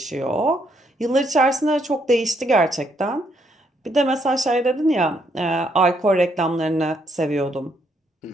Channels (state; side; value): normal; both; correlation 0.73